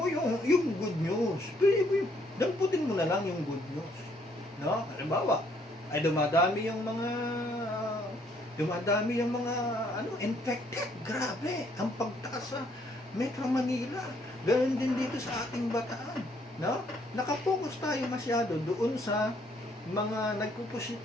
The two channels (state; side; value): normal; both; correlation 0.67